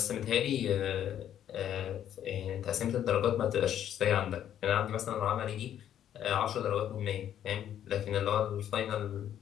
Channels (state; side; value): quieter; right; 10.5 dB